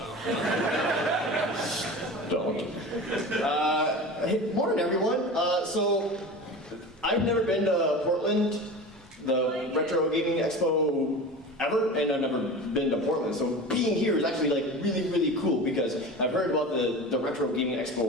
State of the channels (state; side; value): normal; both; correlation 0.33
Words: don't. Hey, morning everyone. So, I've never been to Portland, the Retro Gaming Expo ever, and I've never been to Portland. So being here is actually like really cool because I've heard about the Retro Gaming